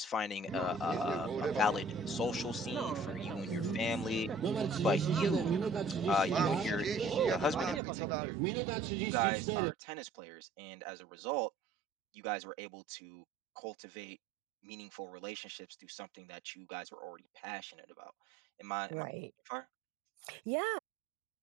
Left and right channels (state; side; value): drops out; left; at 7.8 s